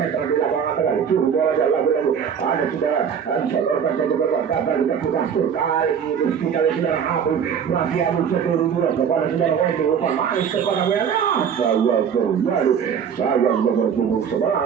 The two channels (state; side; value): quieter; left; 7.5 dB